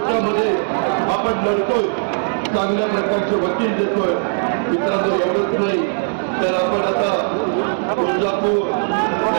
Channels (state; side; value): silent; left; digital silence